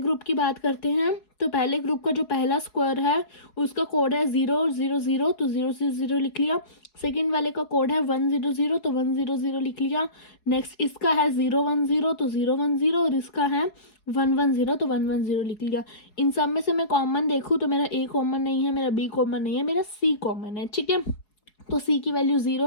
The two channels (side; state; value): right; late; 4.7 ms